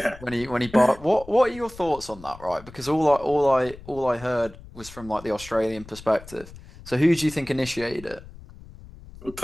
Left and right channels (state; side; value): noise; left; rumble, 18 dB below the sound